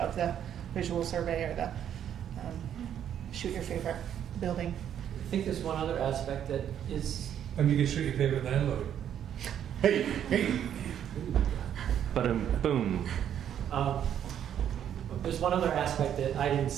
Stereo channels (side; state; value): left; quieter; 9.6 dB